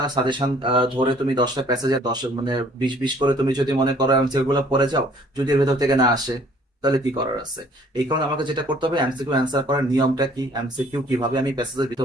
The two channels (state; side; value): normal; both; correlation 0.57